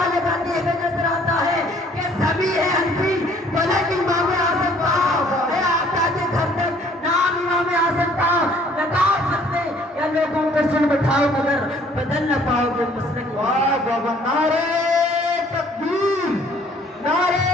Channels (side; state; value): both; normal; correlation 0.58